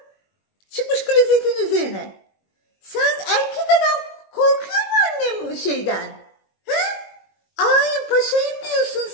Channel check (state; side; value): late; right; 21 ms